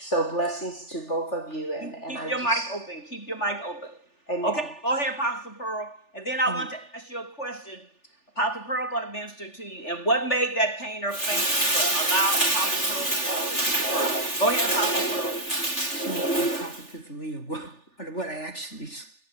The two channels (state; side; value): late; right; 3.4 ms